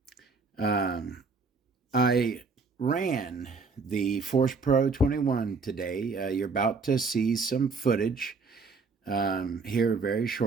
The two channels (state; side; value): quieter; left; 4.4 dB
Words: I ran the Force Pro 21 today. You're about to see some footage here very